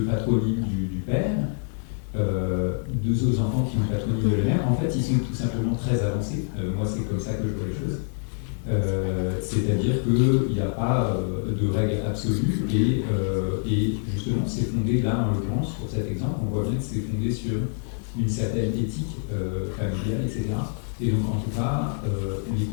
patronyme du père, deux autres enfants qui ont le patronyme de la mère. En fait, ils sont tout simplement très avancés. Moi, c'est comme ça que je vois les choses. C'est-à-dire qu'il n'y a pas de règle absolue et justement, c'est fondé, là, en l'occurrence, pour cet exemple, on voit bien que c'est fondé sur une certaine éthique familiale, etc. Et donc, en tout cas, les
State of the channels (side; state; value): right; silent; 61 dB below the other